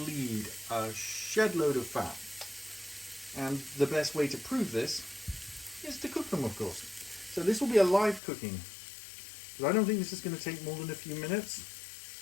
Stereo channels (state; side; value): drops out; right; at 8.2 s